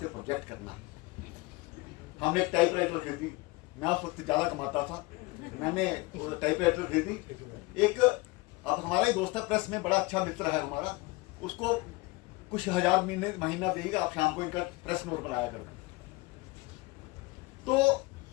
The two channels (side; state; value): right; quieter; 23.0 dB